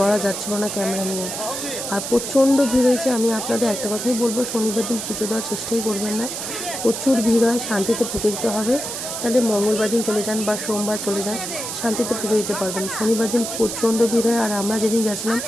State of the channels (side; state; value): right; noise; hiss, 5 dB below the sound